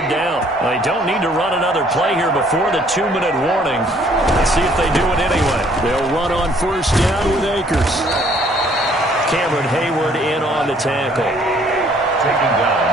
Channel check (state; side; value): normal; both; correlation 0.61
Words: down. They don't need to run another play here before the 2-minute warning. Let's see if they do it anyway. They'll run on first down with Akers. Cameron Hayward in on the tackle. Taken down